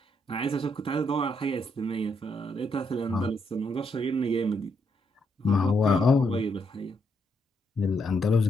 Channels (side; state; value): both; normal; correlation 0.77